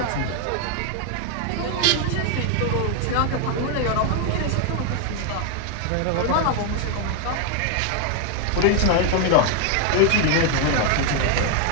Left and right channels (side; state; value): both; different; correlation 0.01